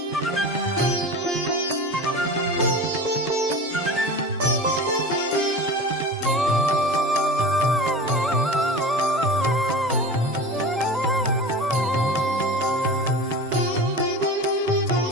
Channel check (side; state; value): both; normal; correlation 0.33